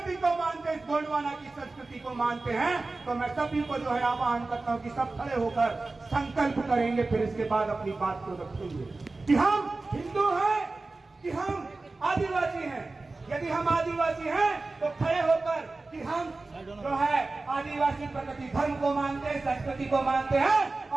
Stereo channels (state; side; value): quieter; left; 3.4 dB